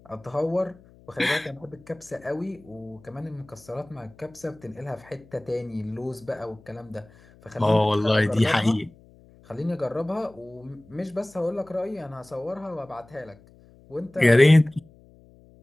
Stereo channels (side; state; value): left; noise; hum, 26 dB below the sound